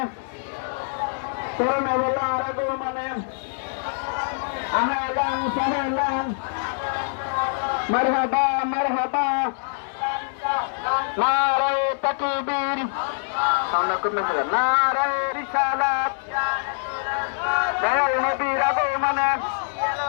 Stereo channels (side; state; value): right; silent; digital silence